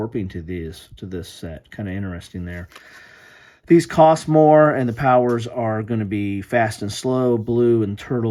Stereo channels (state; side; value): identical; both; correlation 1.00